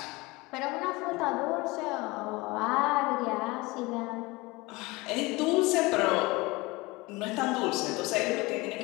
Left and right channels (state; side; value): quieter; right; 22.9 dB